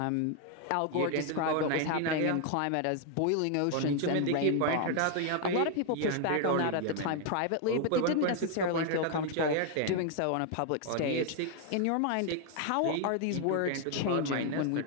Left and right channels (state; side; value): different; both; correlation 0.00